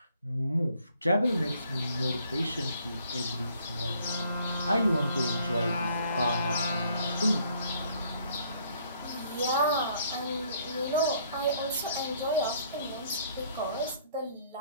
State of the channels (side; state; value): both; inverted; correlation -0.63